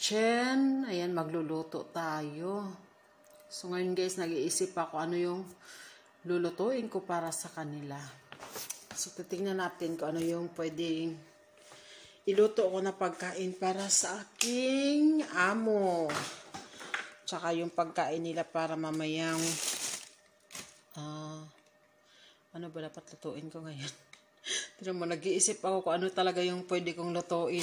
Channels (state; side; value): identical; both; correlation 1.00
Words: Ayan, magluluto tayo. So ngayon guys, nag-iisip ako ano yung lulutuin ko para sa kanila. So titingnan natin kung ano yung pwedeng iluto ko na pagkain para sa aking amo. Tsaka yung pagkain nila para mamayang ano ba dapat lutuin ko ngayon? Tignan mo, nag-iisip ako kung ano talaga yung pwede kong lutuin.